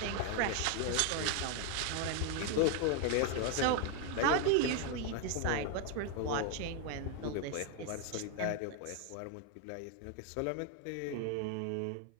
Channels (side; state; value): both; different; correlation 0.01